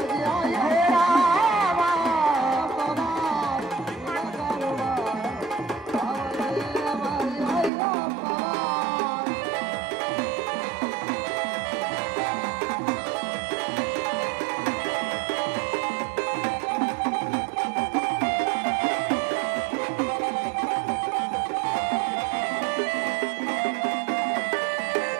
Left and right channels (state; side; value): drops out; left; at 7.7 s